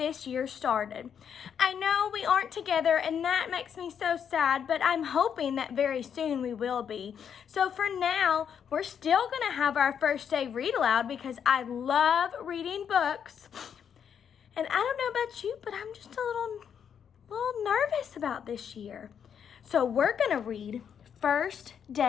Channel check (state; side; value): quieter; right; 7.9 dB